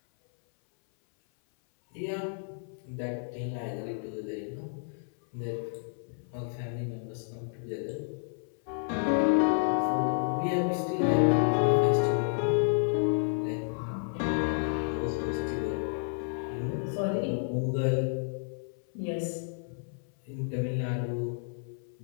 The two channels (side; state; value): right; silent; 56 dB below the other